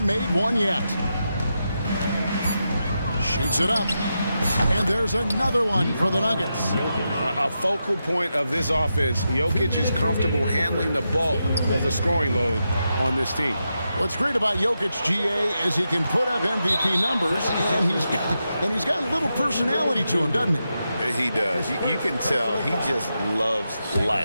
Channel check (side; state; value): both; inverted; correlation -0.87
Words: made one yet. Shoots it up. And there's another one for the Nuggets. A focal point of this offense. Jokic is comfortable handling the bulk of the scoring load on this team. What's great about Jokic, GA, is he can put up MVP numbers, and he's got a little personality to him, doesn't he? He does. You can tell he just loves